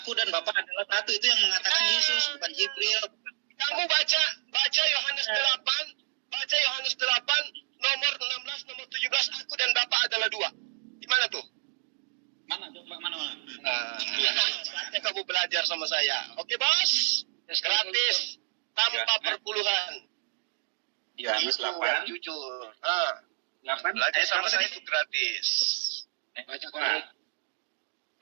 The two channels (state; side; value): silent; left; digital silence